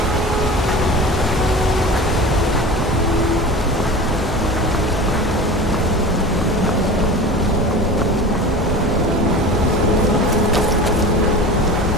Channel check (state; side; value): normal; both; correlation 0.34